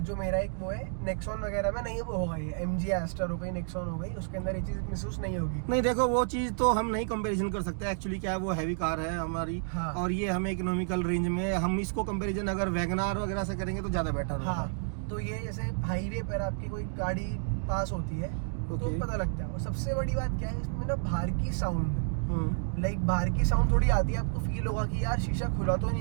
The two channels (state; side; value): silent; left; digital silence